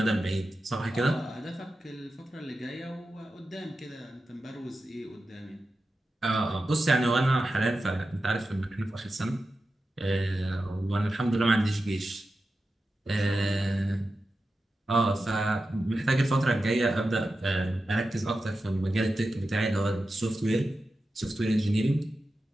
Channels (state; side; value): normal; both; correlation 0.92